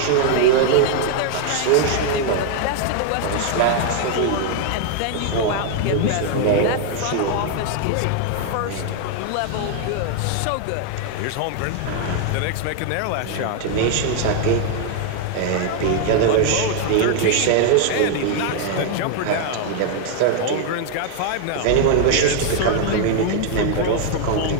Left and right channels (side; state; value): both; different; correlation 0.00